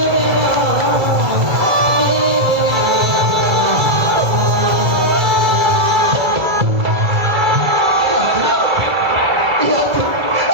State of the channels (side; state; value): left; late; 1.9 ms